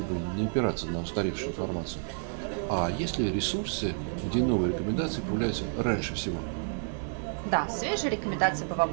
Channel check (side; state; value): left; silent; 58 dB below the other